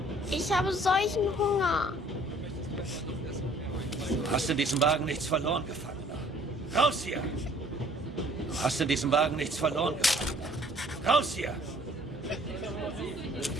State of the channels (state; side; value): normal; both; correlation 0.57